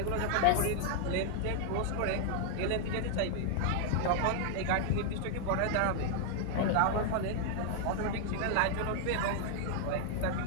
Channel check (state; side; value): different; both; correlation 0.00